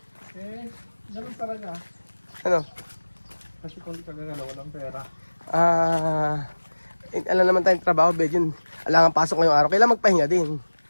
Ganun talaga. Ano? Kasi kung di ka gagalaw, walang pera. Alam naman tayong trabaho, Belgian. Alangan pasok ngayong araw. Kailangan magpahinga din.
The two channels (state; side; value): inverted; both; correlation -1.00